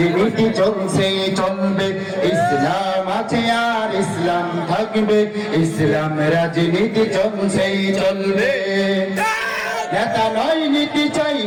চলছে চলবে। ইসলাম আছে আর ইসলাম থাকবে, ইসলাম রাজনীতি চলছে চলবে। নেতা নয় নীতি চাই,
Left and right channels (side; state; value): both; identical; correlation 1.00